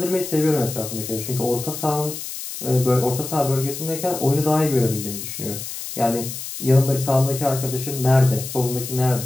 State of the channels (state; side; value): noise; left; hiss, 8 dB below the sound